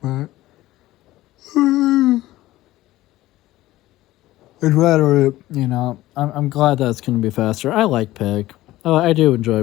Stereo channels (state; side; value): quieter; right; 16.4 dB